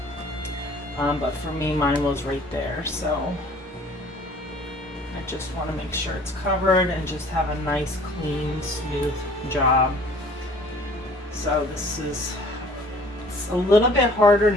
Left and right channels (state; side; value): normal; both; correlation 0.52